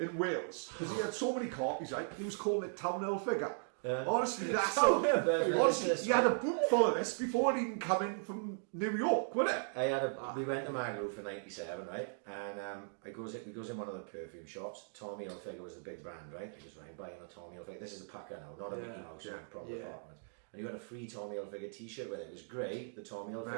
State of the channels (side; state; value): left; silent; digital silence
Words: Wales because he had so many copies. Right, he was calling it Town Hilfiger. Honestly, that's so. Honestly, he had a book full of this before it even come in from New York, wasn't it? We went to Magaluf for '97, right? And we goes in one of the perfume shops. Tommy Hilfiger was the big brand, right? I just went buying a Tommy Hilfiger. This is a packer now, not a Mickey Mouse, proper apartment. And you got a free Tommy Hilfiger t-shirt with it. It was grey, the Tommy